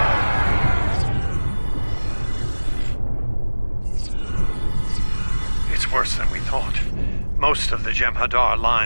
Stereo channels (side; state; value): both; inverted; correlation -1.00